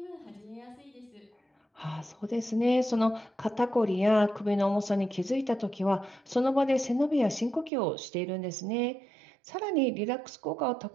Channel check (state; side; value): drops out; left; at 7.7 s